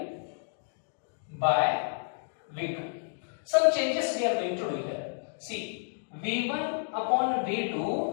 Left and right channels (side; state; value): right; silent; digital silence